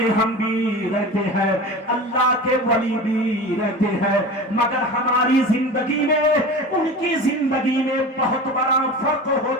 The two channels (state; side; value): normal; both; correlation 0.32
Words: ہم بھی رہتے ہیں، اللہ کے ولی بھی رہتے ہیں، مگر ہماری زندگی میں ان کی زندگی میں بہت بڑا فرق